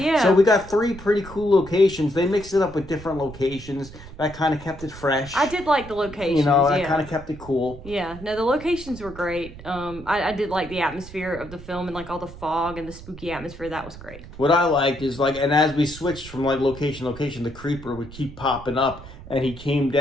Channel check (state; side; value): noise; right; rumble, 15 dB below the sound